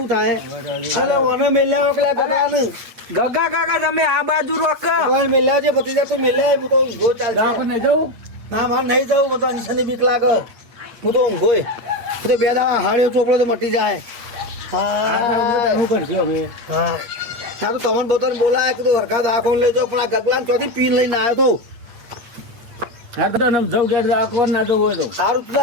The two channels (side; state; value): left; late; 8.7 ms